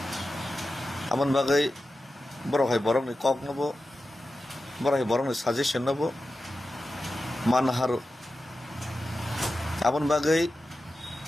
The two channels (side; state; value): both; normal; correlation 0.92